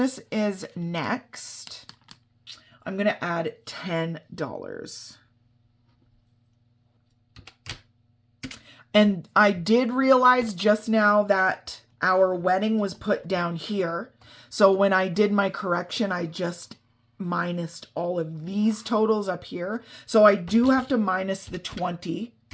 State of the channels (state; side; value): identical; both; correlation 1.00